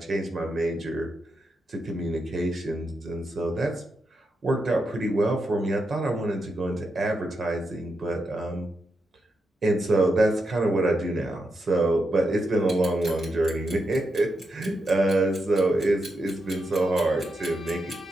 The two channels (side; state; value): both; normal; correlation 0.85